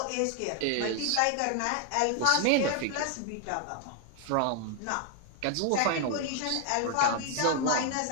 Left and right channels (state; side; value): different; both; correlation 0.00